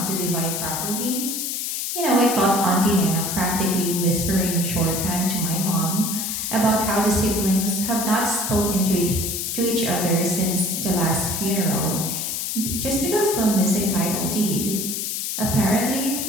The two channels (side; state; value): left; noise; hiss, 2 dB below the sound